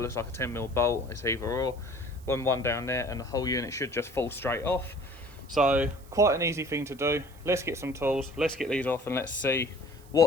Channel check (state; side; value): noise; right; hiss, 25 dB below the sound